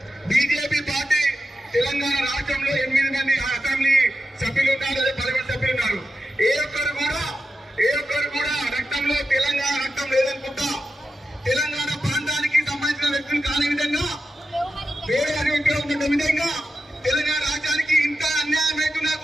బీజేపీ పార్టీ తెలంగాణ రాష్ట్రంలో 8 మంది అసెంబ్లీ సభ్యులు ఉన్నారు, అదే పార్లమెంట్ సభ్యులు ఉన్నారు. ఏ ఒక్కరు కూడా రక్తంలో తెలంగాణ రక్తం లేదనుకుంటా, తెలంగాణ ప్రాంతానికి సంబంధించిన వ్యక్తులు కాని విధంగా, వేరే వ్యక్తులు ఉన్న విధంగా తెలంగాణ రాజ్యానికి ఇంత అన్యాయం అవుతున్నా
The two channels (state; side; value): normal; both; correlation 0.90